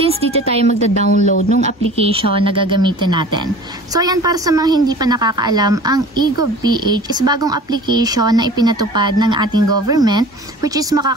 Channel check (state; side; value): normal; both; correlation 0.42